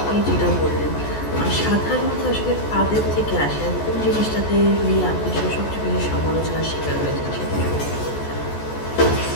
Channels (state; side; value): late; right; 14 ms